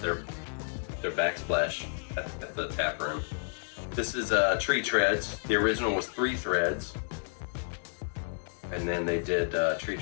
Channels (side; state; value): right; silent; digital silence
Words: backsplash at the tap room. This is Tree Treads. The original was 3 threads, and then they did Tree